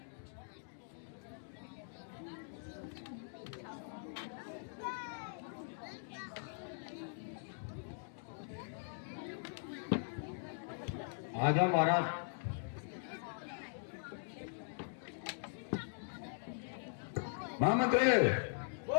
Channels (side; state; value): right; silent; digital silence